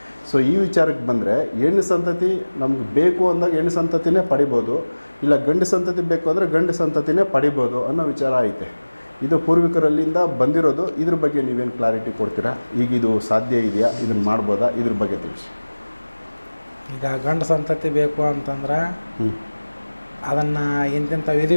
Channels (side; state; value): both; inverted; correlation -1.00